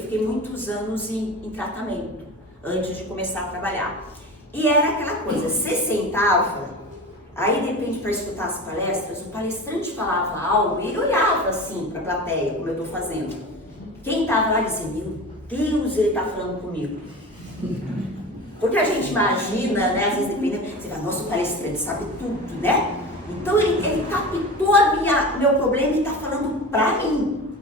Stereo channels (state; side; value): normal; both; correlation 0.31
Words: muitos anos em tratamento, antes de começar a trabalhar. E era aquela coisa, você sentava, aí de repente para escutar as palestras, o palestrante falava algo e ele olhava assim para a plateia, como eu estou fazendo. Quem estava lá dizia: meu Deus, ele está falando comigo. Porque a gente imagina, né, às vezes dependendo, você fala: nossa, o palestrante sabe tudo, né? Então ele captou meu problema e está falando para mim.